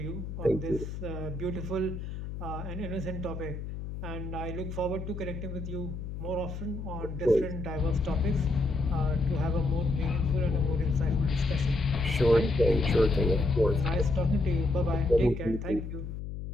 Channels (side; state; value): left; noise; hum, 7 dB below the sound